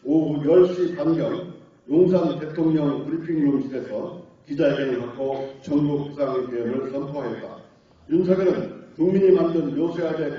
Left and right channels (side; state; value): both; identical; correlation 1.00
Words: 오후 10시 반경 용산 대통령 브리핑룸실에서 기자회견을 갖고 전국 비상계엄을 선포하였다. 윤석열은 국민이 만든